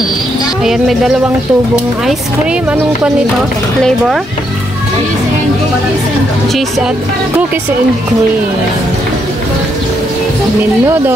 Ayan, may dalawang tubong ice cream. Anong pa nito? Flavor? Cheese at cookies and cream.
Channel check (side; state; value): both; normal; correlation 0.77